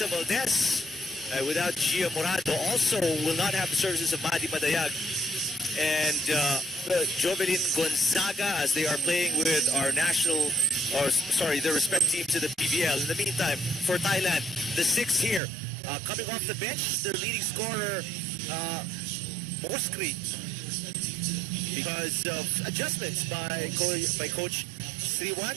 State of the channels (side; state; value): left; drops out; at 15.4 s